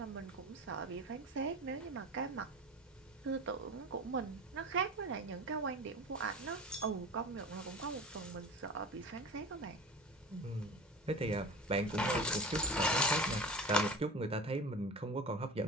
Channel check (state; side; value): normal; both; correlation 0.33